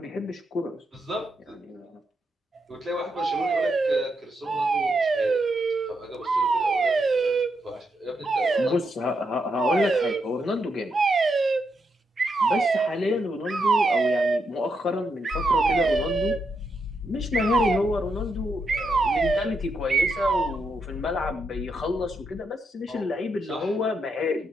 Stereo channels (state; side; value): normal; both; correlation 0.82